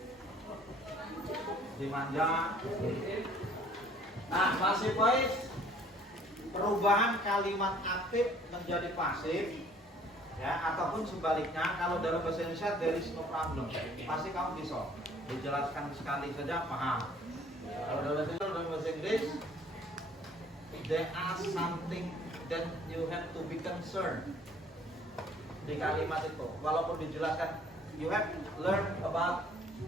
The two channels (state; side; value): normal; both; correlation 0.56